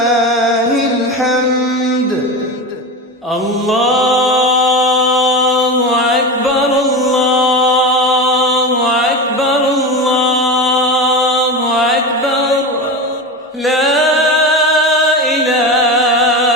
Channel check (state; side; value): normal; both; correlation 0.23